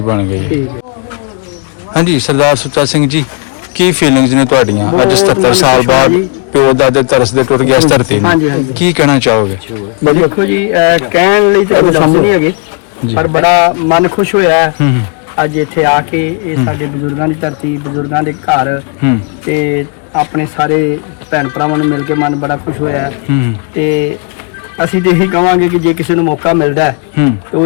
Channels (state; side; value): quieter; right; 36.1 dB